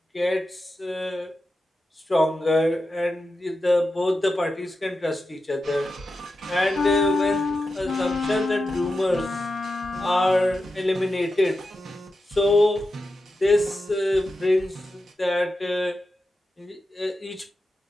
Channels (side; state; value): both; normal; correlation 0.90